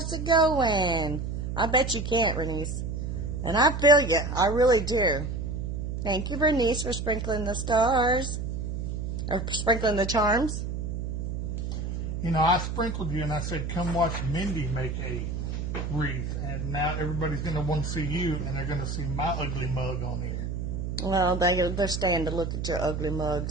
it going? I bet you can't, Bernice. And I feel you. I really do. Thank you, Bernice, for sprinkling the stars. Or sprinkling the charms. You know, I sprinkled you and I said, come watch Mindy make a wreath. And now everybody's going to want to see you and they're going to see my ugly mug on here. Well, they're starting to look at your ugly mug,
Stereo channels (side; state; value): right; noise; hum, 3 dB below the sound